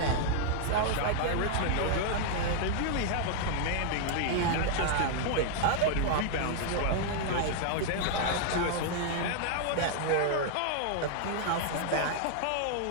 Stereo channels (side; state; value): both; different; correlation 0.00